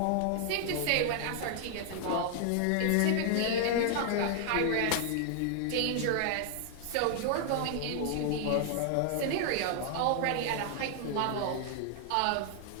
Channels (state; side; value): different; both; correlation 0.00